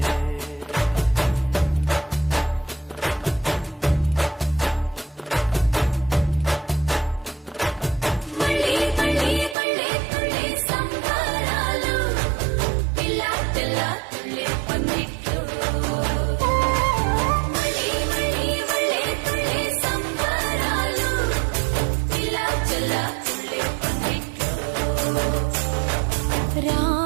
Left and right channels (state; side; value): drops out; left; at 9.6 s